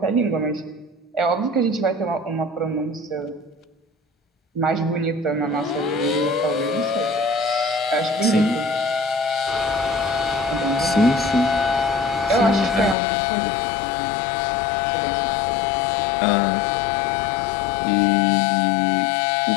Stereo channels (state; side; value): drops out; right; at 13.0 s